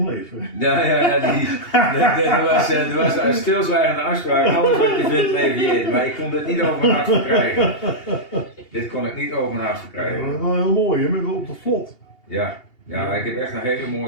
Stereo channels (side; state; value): right; late; 2.8 ms